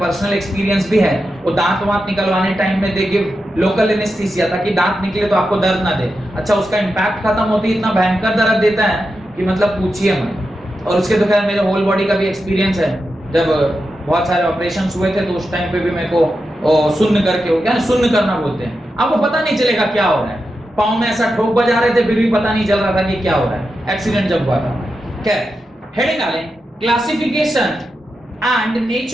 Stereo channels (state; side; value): normal; both; correlation 0.89